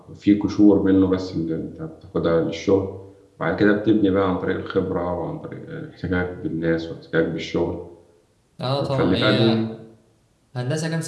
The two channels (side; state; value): both; identical; correlation 1.00